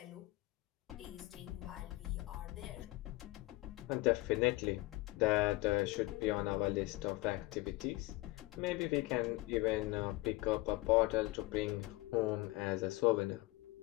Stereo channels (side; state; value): right; quieter; 20.8 dB